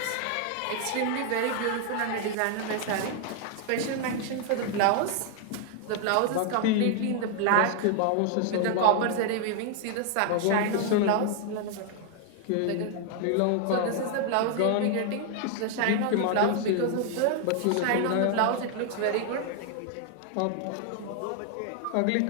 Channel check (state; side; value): different; both; correlation 0.00